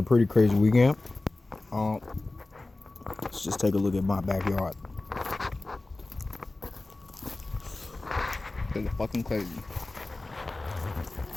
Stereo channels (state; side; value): quieter; right; 3.0 dB